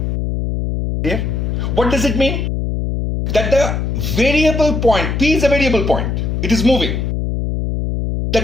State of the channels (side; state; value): left; noise; hum, 1 dB below the sound